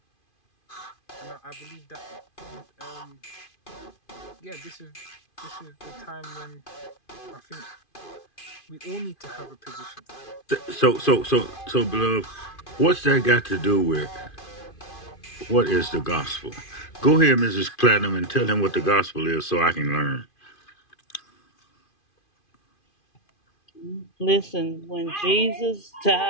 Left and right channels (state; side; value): late; right; 2.5 ms